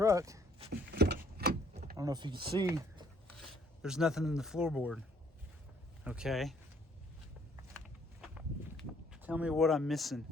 I don't know if you can see, there's nothing in the floorboard. Okay, tell me what I'm missing.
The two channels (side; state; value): both; normal; correlation 0.64